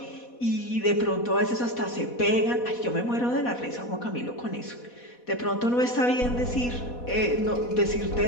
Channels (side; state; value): right; late; 4.1 ms